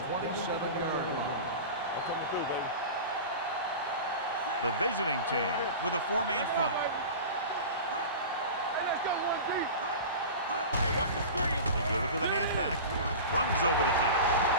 27-yard line. The visiting team with a 4-man front. Hey, let's go 1 deep. Hey, watch the screen. They give it to the halfback. Runs over the tackle.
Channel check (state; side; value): inverted; both; correlation -0.32